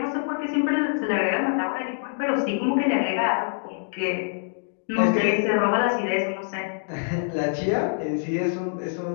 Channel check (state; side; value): silent; right; digital silence